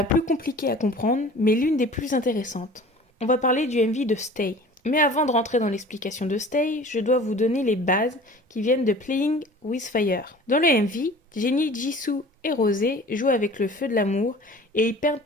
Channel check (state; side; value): normal; both; correlation 0.44